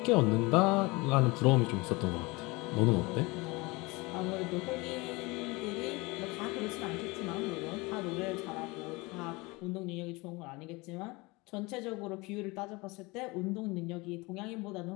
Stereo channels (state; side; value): quieter; right; 24.6 dB